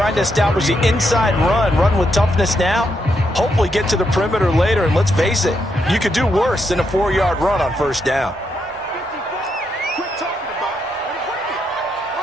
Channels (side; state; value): both; normal; correlation 0.80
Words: to establish the inside run with toughness now, hopefully get to the perimeter later. And let's face it, you could do worse than a 4-yard run on 1st down.